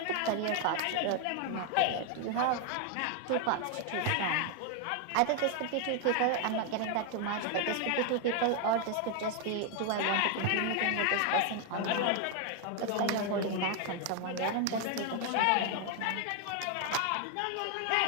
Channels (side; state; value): both; different; correlation 0.00